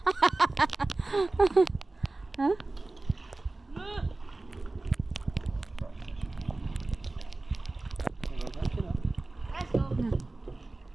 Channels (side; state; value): left; quieter; 3.0 dB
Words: Huh? Let's go.